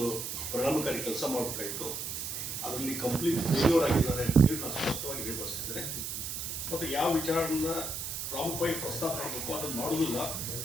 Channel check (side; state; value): right; noise; hiss, 4 dB below the sound